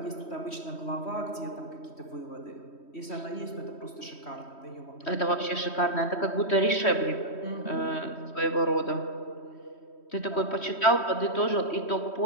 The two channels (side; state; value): right; late; 3.1 ms